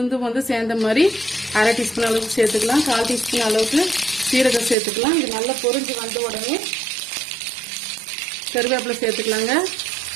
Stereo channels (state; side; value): drops out; left; at 4.8 s